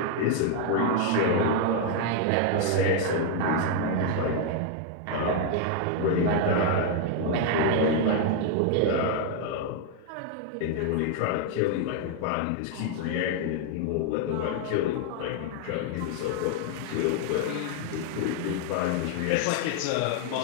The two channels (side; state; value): both; different; correlation 0.00